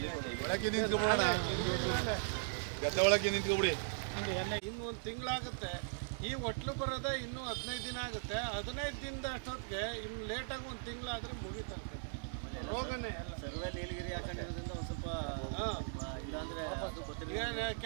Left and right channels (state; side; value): silent; left; digital silence